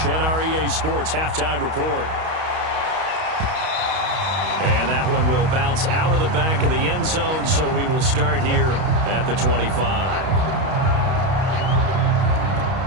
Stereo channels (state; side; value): late; left; 32 ms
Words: and our EA Sports halftime report. And that one will bounce out of the back of the end zone, so we will start here at the 25.